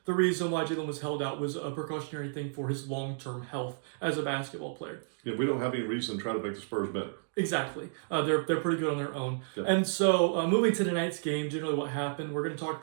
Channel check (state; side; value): silent; left; digital silence